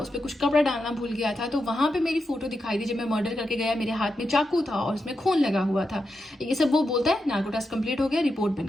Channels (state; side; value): normal; both; correlation 0.87